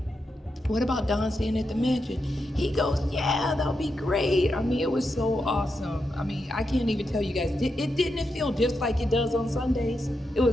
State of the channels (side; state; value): both; normal; correlation 0.85